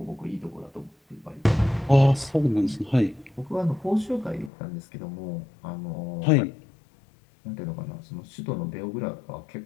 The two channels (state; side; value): drops out; right; at 4.5 s